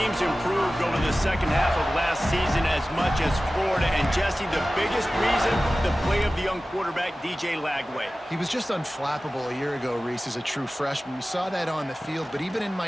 improved over the second half of last season as much as Florida. And Jesse, the biggest reason, the play of the young quarterback, DJ Lagway. He was just unflappable a year ago, Reese, as a true freshman. We saw that on the field, but even in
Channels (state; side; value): normal; both; correlation 0.96